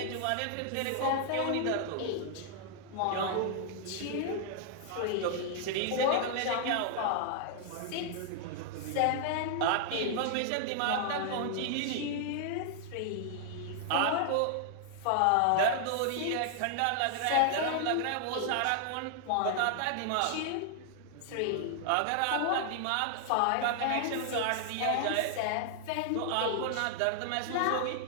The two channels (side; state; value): both; different; correlation -0.01